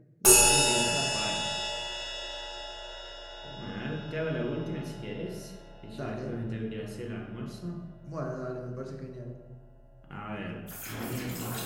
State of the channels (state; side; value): identical; both; correlation 1.00